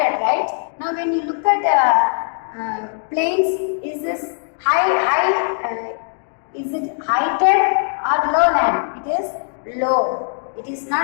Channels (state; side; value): silent; right; 66 dB below the other